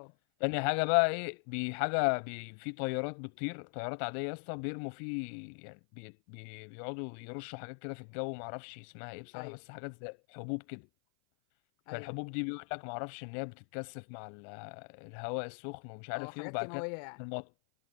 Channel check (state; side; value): silent; right; 52 dB below the other